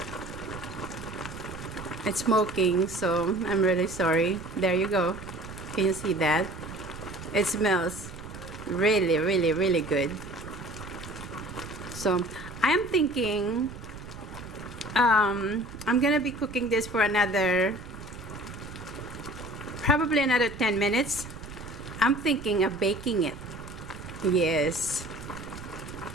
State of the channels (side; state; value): right; noise; rumble, 13 dB below the sound